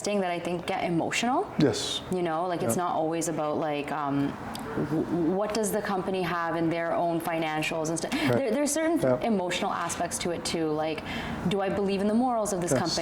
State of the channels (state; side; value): identical; both; correlation 1.00